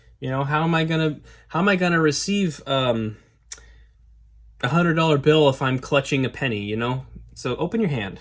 You know, how am I gonna receive $100 bill if I'm clutching a penny? You know, so open your hand.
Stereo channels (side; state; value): both; identical; correlation 1.00